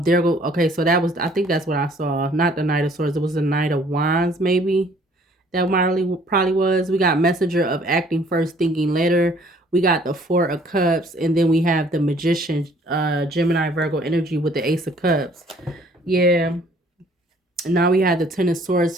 so that was, I think that's what I saw. Not the Knight of Swords. It was the Knight of Wands, maybe. That probably was. We got Messenger of Acting First, Thinking Later. We got the Four of Cups, and then we have the Magician, Gemini, Virgo energy with the Ace of Cups. Yeah. Now we have the Ten of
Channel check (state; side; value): normal; both; correlation 0.58